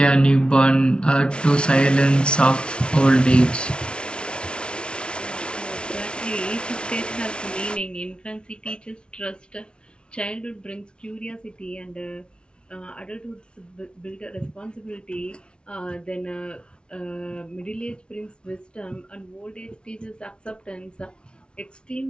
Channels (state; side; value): late; right; 0.057 ms